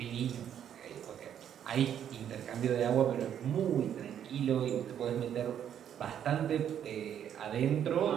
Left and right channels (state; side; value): quieter; left; 9.5 dB